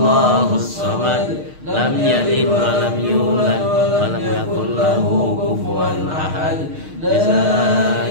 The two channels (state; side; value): late; left; 6.5 ms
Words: samad. Lam yalid wa lam yulad wa lam yakul lahu kufuwan ahad. La